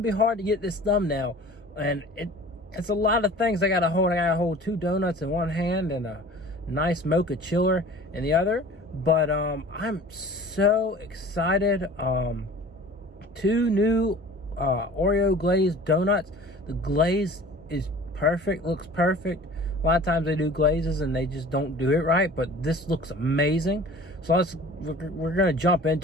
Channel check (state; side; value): normal; both; correlation 0.44